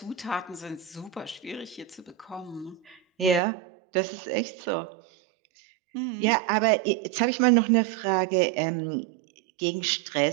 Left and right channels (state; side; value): drops out; left; at 3.4 s